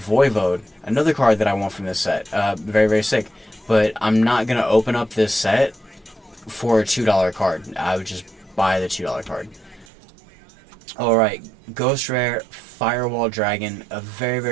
Voivode, another card that I want from this set. Very, very sick. But I'm not gonna open up this set for a $2 card. I would just buy the $2 card. Alright, Ghost Rare Firewall Dragon, a very,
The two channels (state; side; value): drops out; left; at 9.9 s